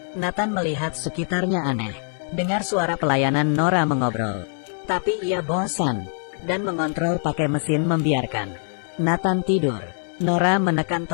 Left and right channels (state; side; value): silent; right; digital silence